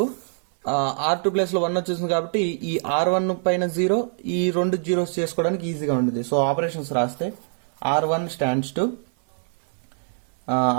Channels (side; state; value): left; silent; 62 dB below the other